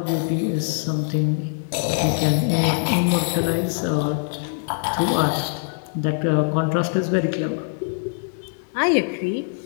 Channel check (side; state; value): right; silent; digital silence